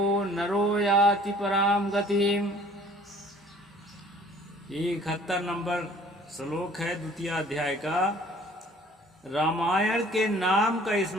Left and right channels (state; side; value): normal; both; correlation 0.53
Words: नरो याति पराम गतिम। 71 नंबर श्लोक है 2 अध्याय का। रामायण के नाम का